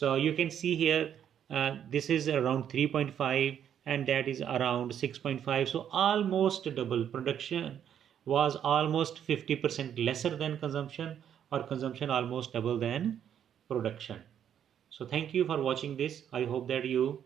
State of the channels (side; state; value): left; quieter; 9.3 dB